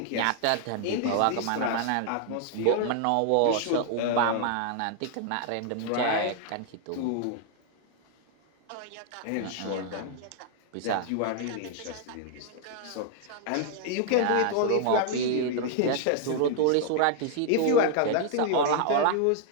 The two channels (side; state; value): both; different; correlation 0.00